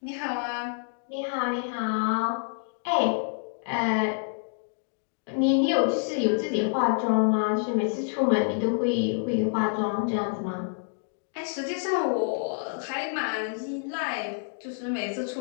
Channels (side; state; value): right; silent; digital silence